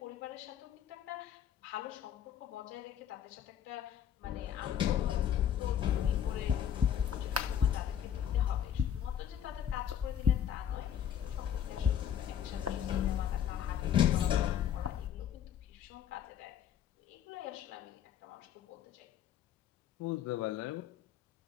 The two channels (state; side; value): quieter; right; 9.6 dB